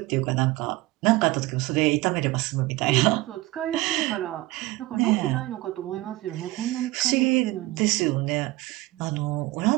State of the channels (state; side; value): quieter; left; 19.1 dB